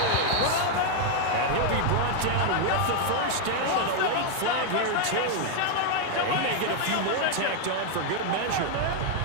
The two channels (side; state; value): both; different; correlation 0.00